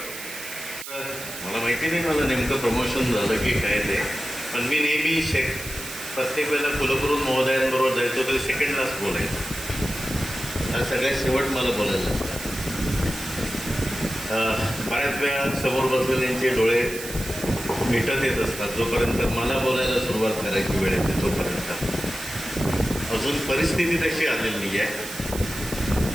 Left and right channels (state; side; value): noise; right; hiss, 10 dB below the sound